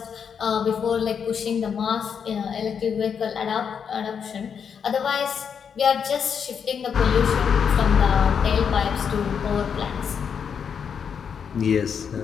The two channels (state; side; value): quieter; right; 7.0 dB